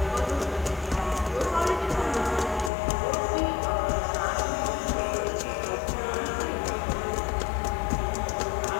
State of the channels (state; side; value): drops out; right; at 2.7 s